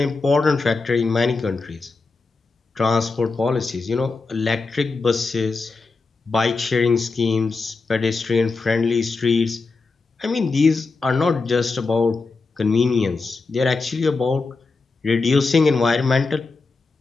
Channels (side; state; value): right; quieter; 4.0 dB